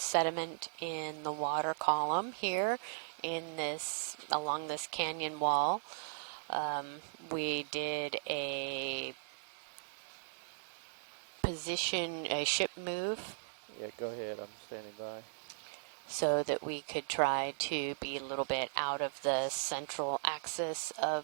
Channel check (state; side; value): silent; left; digital silence